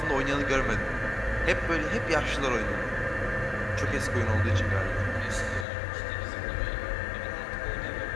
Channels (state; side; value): drops out; right; at 5.7 s